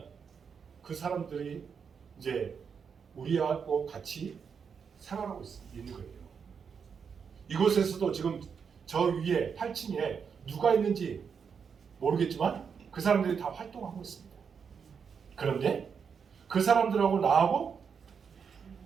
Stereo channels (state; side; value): quieter; left; 6.5 dB